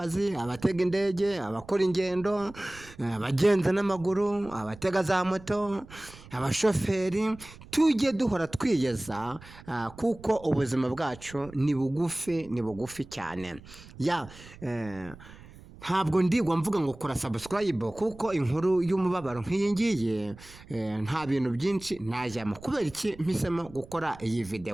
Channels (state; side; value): noise; right; rumble, 19 dB below the sound